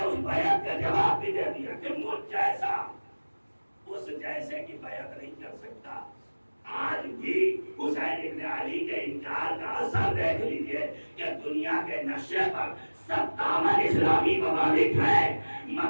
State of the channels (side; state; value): both; inverted; correlation -1.00